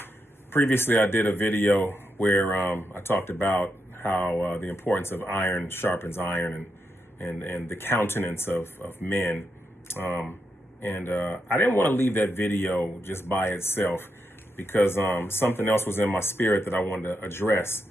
Previously, I did a video where I talked about how the importance of iron sharpens iron and the countenance of men. I didn't want to leave that video just by itself because something else was in my spirit that I wanted to address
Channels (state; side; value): normal; both; correlation 0.83